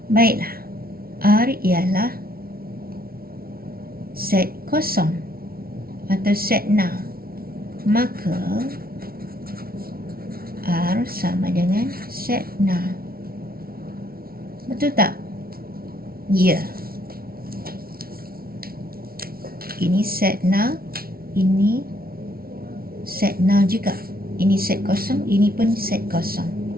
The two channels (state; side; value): late; left; 0.44 ms